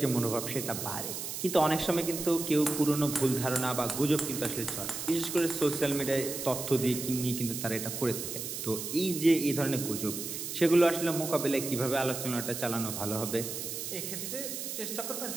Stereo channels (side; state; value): right; noise; hiss, 6 dB below the sound